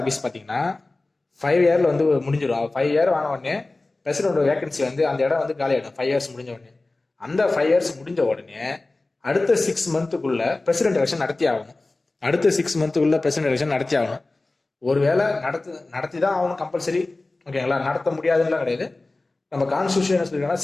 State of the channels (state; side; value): quieter; right; 3.1 dB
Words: பார்த்தீங்கன்னா 5 இயர்ல வந்து முடிஞ்சிடும். 5 இயர் ஆன உடனே பிரசிடென்ட் வேகன்சி வந்து அந்த இடம் வந்து காலி ஆகிடும் 5 இயர்ஸ் முடிஞ்ச உடனே. அந்த 5 இயர்ஸ் முடிஞ்ச உடனே அடுத்த 6 மந்த்துக்குள்ள பிரசிடென்ட் எலெக்ஷன் நடத்தி ஆகணும். அடுத்த 6 மந்த்துக்குள்ள பிரசிடென்ட் எலெக்ஷன் நடத்தி ஆகணும். ஒருவேளை நடத்தி தான் ஆகணும் கம்பல்சரி. ஓகேங்களா, நடத்த முடியாதுன்னு கிடையாது. நம்ம கான்ஸ்டியூஷன் சொல்லிருக்கோம்னா